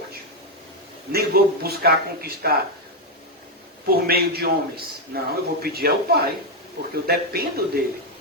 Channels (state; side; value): normal; both; correlation 0.04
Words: Nem vou buscar conquistar por meio de homens. Não, eu vou pedir ao Pai, porque eu dependo dele.